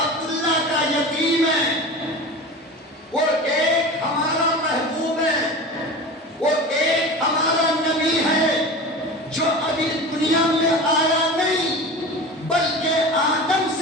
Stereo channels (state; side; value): normal; both; correlation 0.32